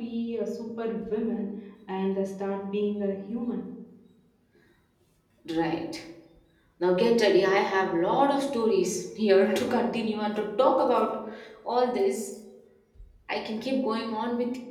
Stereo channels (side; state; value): both; identical; correlation 1.00